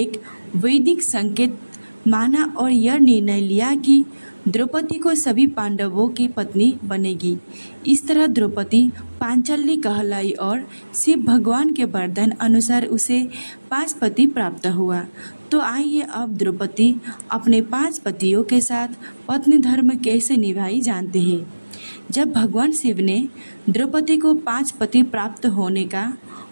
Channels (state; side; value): inverted; both; correlation -1.00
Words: वैदिक संकेत माना और यह निर्णय लिया कि द्रौपदी को सभी पांडवों की पत्नी बनेगी। इस तरह द्रौपदी पांचाली कहलाई और शिव भगवान के वरदान अनुसार उसे 5 पति प्राप्त हुआ। तो आइए अब द्रौपदी अपने 5 पतियों के साथ पत्नी धर्म कैसे निभाई जानते हैं। जब भगवान शिव ने द्रौपदी को 5 पति प्राप्त होने का